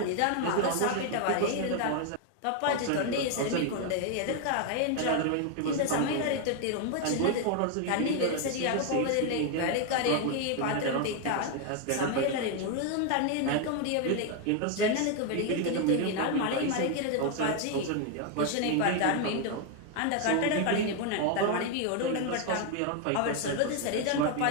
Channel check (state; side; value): different; both; correlation 0.01